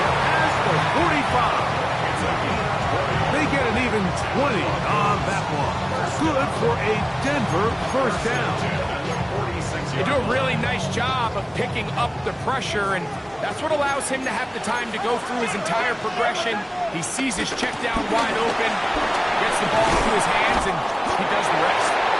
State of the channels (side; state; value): both; identical; correlation 1.00